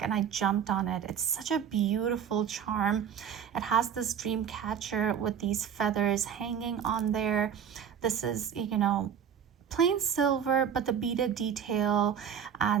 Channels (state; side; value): quieter; left; 8.2 dB